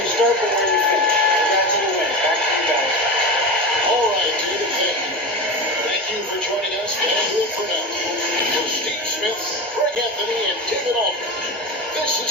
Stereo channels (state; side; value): normal; both; correlation 0.24